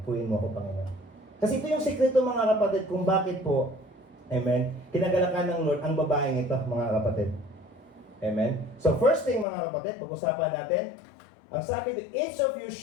Puyin mo ako, Panginoon. Kasi ito yung sikreto, mga kapatid, kung bakit po, amen, kinagalakan ng Lord ang babaeng ito, mga kapatid. Amen? So first thing, mga kapatid, pag-usapan natin, ang sabi dito, each of you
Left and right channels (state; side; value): drops out; right; at 9.5 s